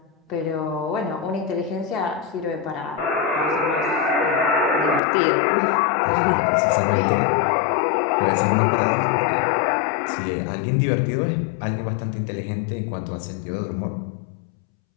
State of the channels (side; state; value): right; drops out; at 5.0 s